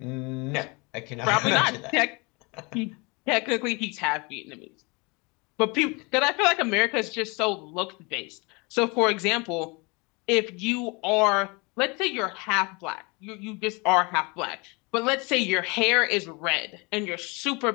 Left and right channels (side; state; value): right; quieter; 28.3 dB